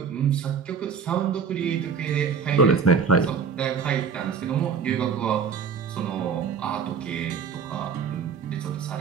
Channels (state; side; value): quieter; left; 6.2 dB